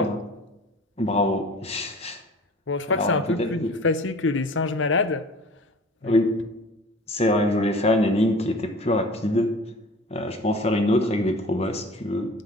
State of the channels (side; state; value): both; normal; correlation 0.43